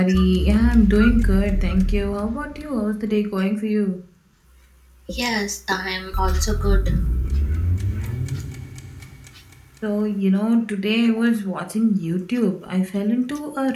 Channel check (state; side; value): identical; both; correlation 1.00